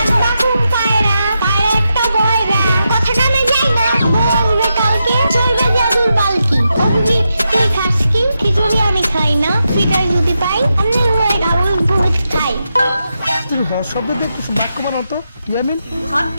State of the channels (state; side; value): inverted; both; correlation -0.86